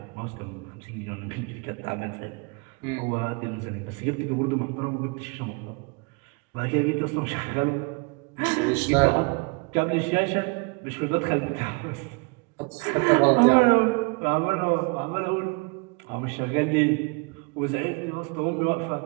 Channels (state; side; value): quieter; left; 30.7 dB